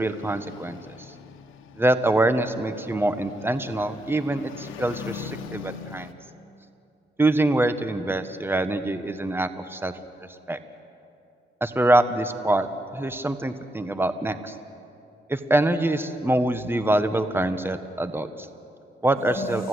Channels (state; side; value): normal; both; correlation 0.82